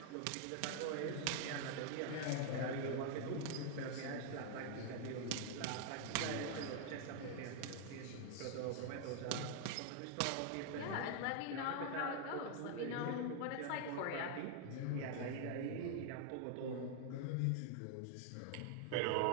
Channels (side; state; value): both; different; correlation 0.00